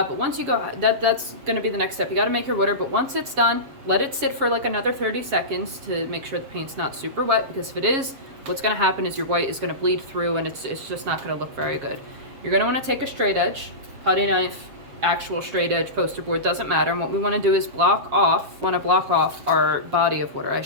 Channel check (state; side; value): late; left; 7.5 ms